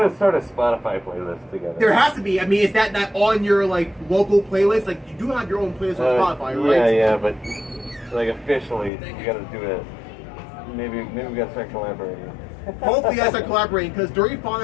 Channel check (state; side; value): drops out; right; at 8.9 s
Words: start a Spotify playlist together. There has to be. I mean, is that on your local playlist? Like, you do have your own playlist on Spotify, right? Yeah, but officially, we gotta do it. Maybe we gotta start collaborating. Hopefully, I start collaborating because Dirty